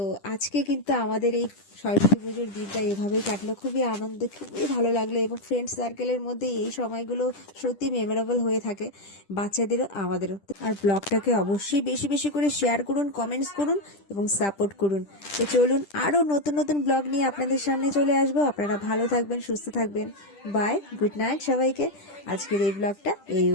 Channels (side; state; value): right; late; 10 ms